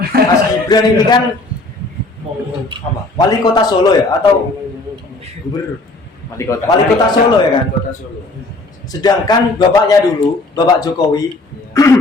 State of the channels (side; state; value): right; quieter; 3.0 dB